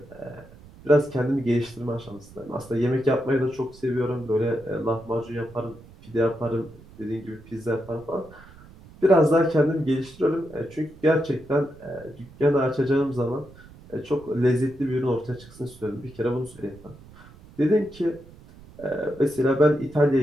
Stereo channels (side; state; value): right; noise; rumble, 21 dB below the sound